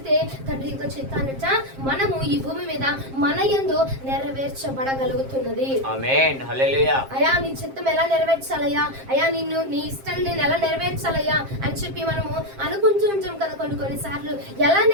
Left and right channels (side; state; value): left; late; 7.5 ms